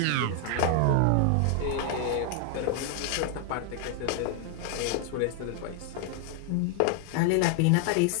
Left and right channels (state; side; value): different; both; correlation 0.00